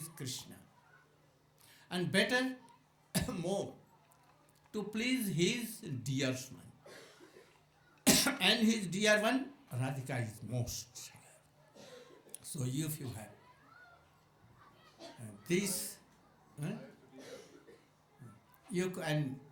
Krishna. And better more to please his dear one. And his dear one, Radhika is most. So if you have this, you can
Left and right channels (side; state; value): both; identical; correlation 1.00